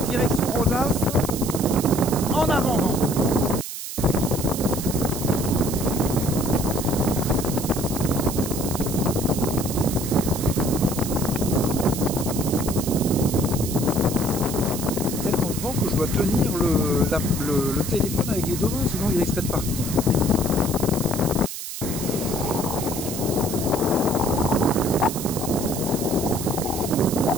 direction Rosas, en avant-vent. Que je dois tenir le téléphone avec les deux mains, sinon il risquerait de partir.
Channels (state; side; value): noise; right; hiss, 7 dB below the sound